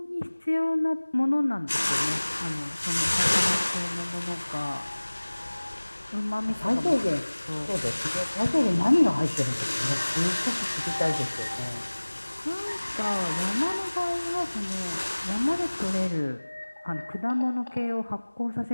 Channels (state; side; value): inverted; both; correlation -1.00